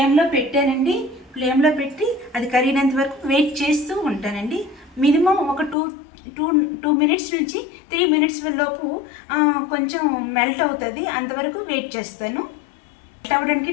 పెట్టానండి. ఫ్లేమ్లో పెట్టి అది కరిగినంత వరకు వెయిట్ చేస్తూ ఉంటానండి. మినిమం ఒక 2 minutes నుంచి 3 minutes లోపు కొంచెం మెల్ట్ అవుతుంది. అంతవరకు వెయిట్ చేస్తాను. మెల్ట్ అవ్వడానికి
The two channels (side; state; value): right; drops out; at 5.8 s